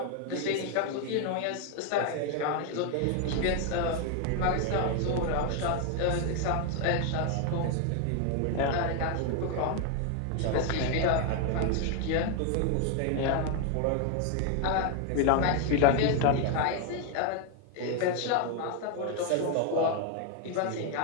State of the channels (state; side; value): different; both; correlation 0.00